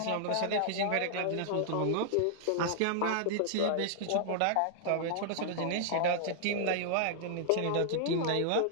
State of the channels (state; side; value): different; both; correlation -0.01